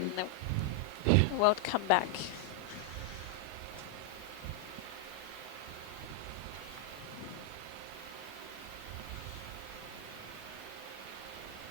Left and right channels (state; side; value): normal; both; correlation 0.00